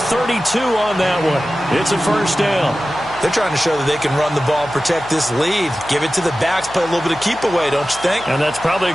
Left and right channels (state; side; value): noise; left; hum, 19 dB below the sound